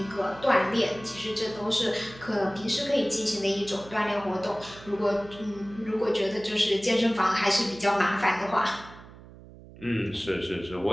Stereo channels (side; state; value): right; noise; hum, 19 dB below the sound